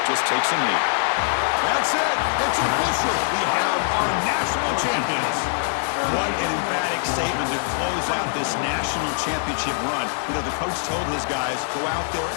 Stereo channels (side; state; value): right; silent; digital silence